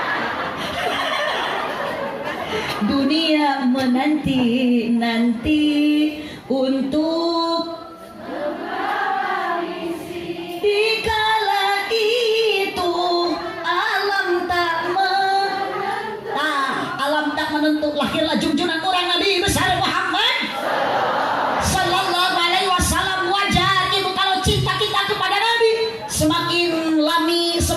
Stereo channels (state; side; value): identical; both; correlation 1.00